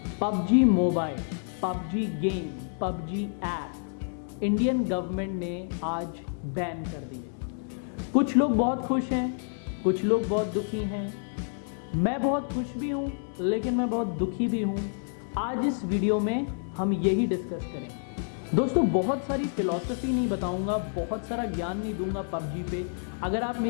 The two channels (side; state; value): right; silent; digital silence